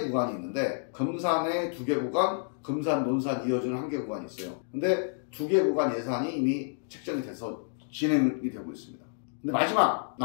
구간이 있는데, 금산에 2개 구간, 금산, 논산 이어지는 1개 구간이 있어요. 근데 2개 구간 예산이 이미 책정이 돼서 진행이 되고 있습니다. 근데 마지막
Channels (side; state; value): right; silent; digital silence